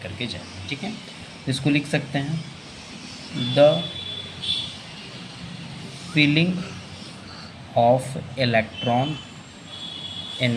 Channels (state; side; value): identical; both; correlation 1.00